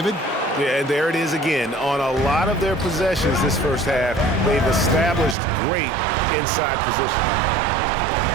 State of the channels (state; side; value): drops out; left; at 5.4 s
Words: Yeah, and there it is again. On a lot of their possessions this first half, they've established great inside position.